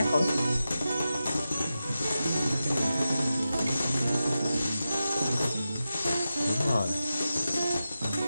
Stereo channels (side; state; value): both; inverted; correlation -0.92